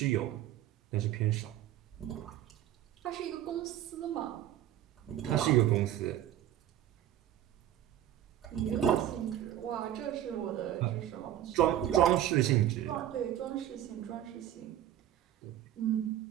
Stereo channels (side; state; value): left; quieter; 11.9 dB